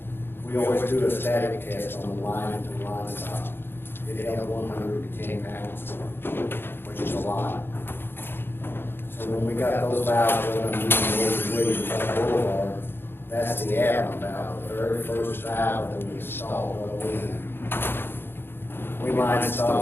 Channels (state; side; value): late; right; 0.10 ms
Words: We always do a static test on the line to the line stop. It held 110 pounds, which is a lot. So when we got those valves done, that's the add-on valve, the very first valve that we installed going in. We line